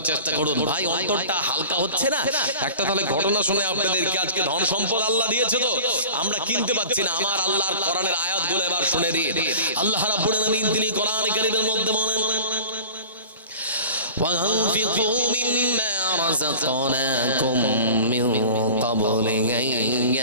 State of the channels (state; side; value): inverted; both; correlation -0.40